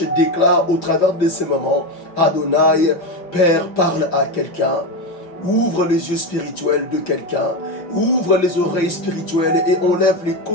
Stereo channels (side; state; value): right; late; 5.7 ms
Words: déclare au travers de ces moments, Adonai, Père, parle à quelqu'un. Ouvre les yeux spirituels de quelqu'un, ouvre les oreilles spirituelles et enlève les